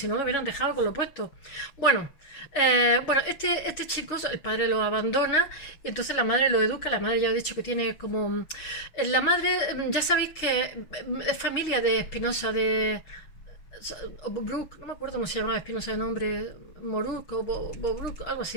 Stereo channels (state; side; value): late; right; 6.5 ms